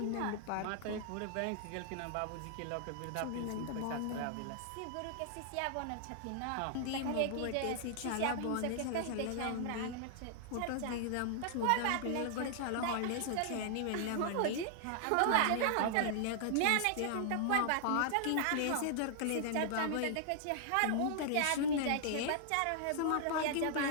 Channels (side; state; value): both; different; correlation -0.01